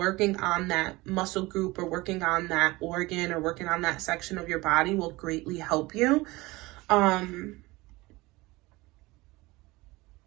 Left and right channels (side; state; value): left; quieter; 21.3 dB